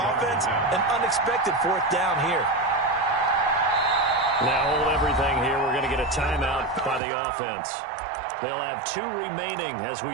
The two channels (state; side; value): drops out; left; at 7.0 s